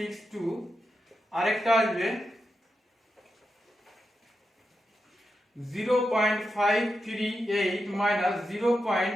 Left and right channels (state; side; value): normal; both; correlation 0.88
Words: আরেকটা আসবে 0.538 মাইনাস